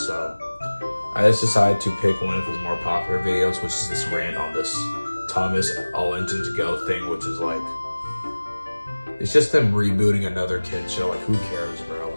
So I just decided to pick one of his more popular videos, which is this rant on this Thomas All Engines Go thing, which is like, it's just them rebooting another kid show. Like, who cares, bro?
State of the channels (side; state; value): both; inverted; correlation -1.00